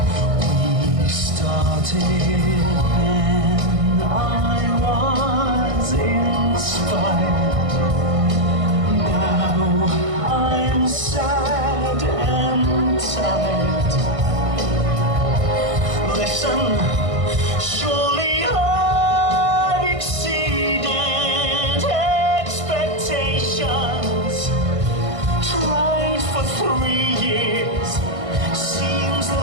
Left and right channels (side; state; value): left; late; 1.6 ms